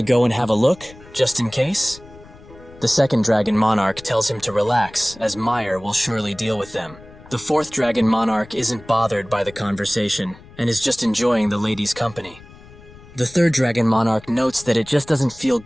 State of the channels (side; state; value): left; noise; rumble, 21 dB below the sound